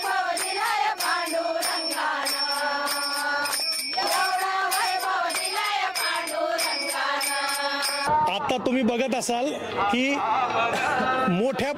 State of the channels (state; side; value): identical; both; correlation 1.00